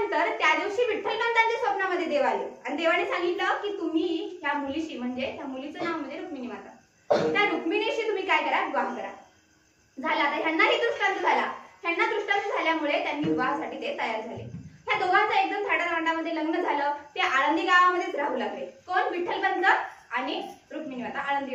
त्या दिवशी विठ्ठलपंतांच्या स्वप्नामध्ये देव आले आणि देवाने सांगितलं की तुम्ही ह्या मुलीशी, म्हणजे त्या मुलीचं नाव म्हणजे रुक्मिणी माता, त्या रुक्मिणीशी तुम्ही काय करा, विवाह करा। झाला, आता ह्यांनाही दृष्टांत झाला। ह्यांना दृष्टांत झाल्यामुळे त्यांनी विवाहासाठी ते तयार झाले। ह्या दोघांचं एकदम थाटामाटामध्ये लग्न झालं। ते आळंदी गावामध्येच राहू लागले। कोण? विठ्ठलपंत आणि रुक्मिणी माता आळंदी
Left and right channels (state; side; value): identical; both; correlation 1.00